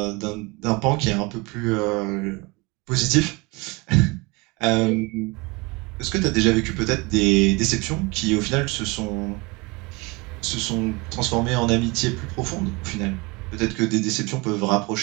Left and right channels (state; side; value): quieter; left; 25.7 dB